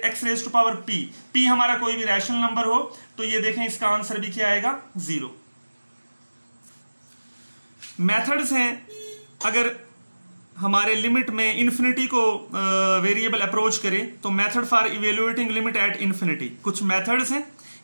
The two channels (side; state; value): both; inverted; correlation -1.00